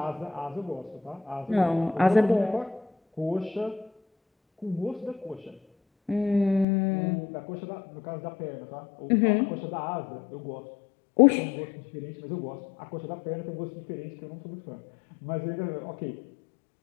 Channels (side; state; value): right; drops out; at 6.7 s